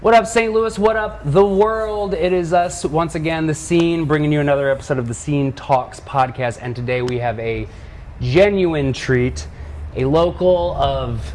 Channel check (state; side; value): identical; both; correlation 1.00